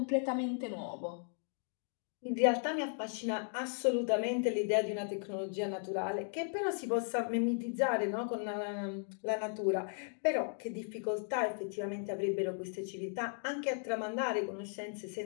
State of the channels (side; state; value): right; silent; 54 dB below the other